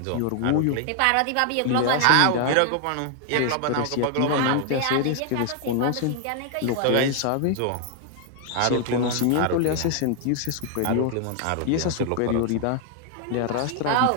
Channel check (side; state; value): both; different; correlation 0.00